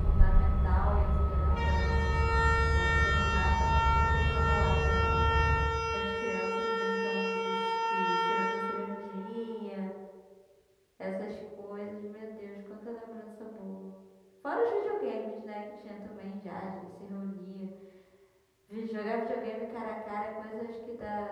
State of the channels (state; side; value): identical; both; correlation 1.00